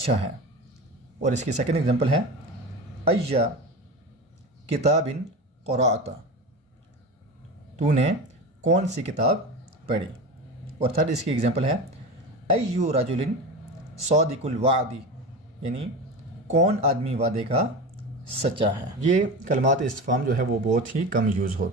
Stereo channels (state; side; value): normal; both; correlation 0.27